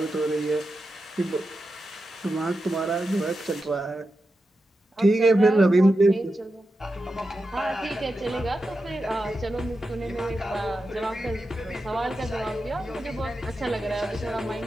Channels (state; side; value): normal; both; correlation 0.90